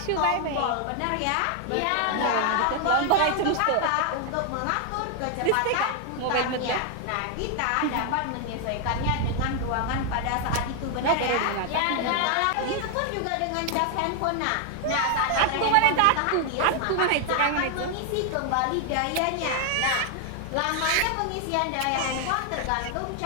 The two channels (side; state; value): both; different; correlation 0.00